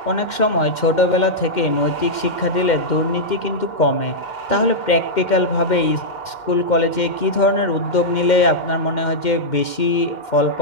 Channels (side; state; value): right; late; 2.1 ms